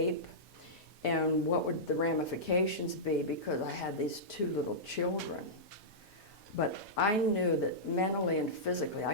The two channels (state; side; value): normal; both; correlation -0.14